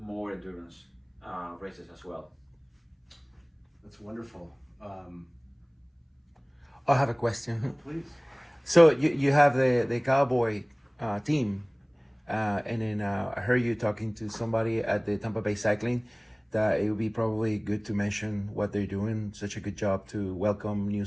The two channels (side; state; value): both; identical; correlation 1.00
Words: endurance races as well. That's wonderful. I have a question. Please. So you have the Cowboy team, and then I heard you talking to somebody at the Tampa Bay Cycling that it would be probably good to mention what they're doing, such a good job to welcome new